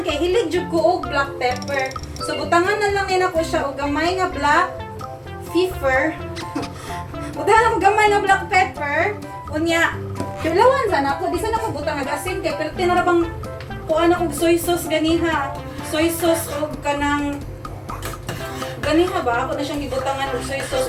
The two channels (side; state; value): both; identical; correlation 1.00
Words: kay hilig jud ko og black pepper. So butangan na lang nina ko siya og gamay nga black pepper. Butangan og gamay nga black pepper. Unya, kilawan sana ako. Di sana ako butang nag-asin kay pero tinarabang kuan ako soy sauce ganiha. Soy sauce og kanang ganiha ba? Ako na siyang gibutangan og soy sauce